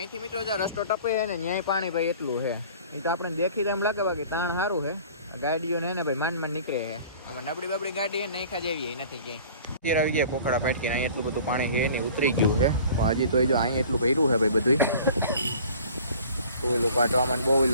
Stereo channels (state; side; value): inverted; both; correlation -0.47